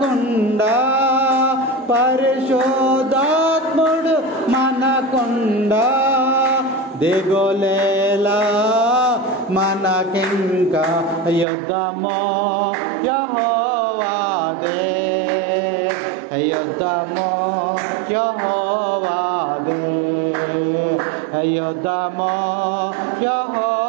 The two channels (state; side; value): drops out; left; at 11.5 s